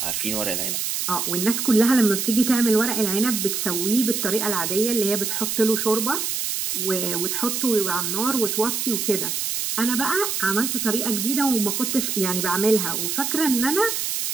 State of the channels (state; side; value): noise; right; hiss, 1 dB below the sound